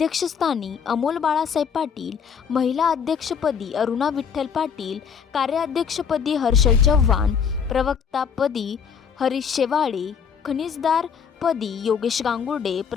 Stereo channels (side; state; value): right; quieter; 6.8 dB